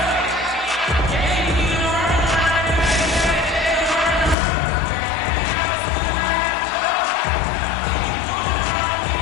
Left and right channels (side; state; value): right; drops out; at 4.4 s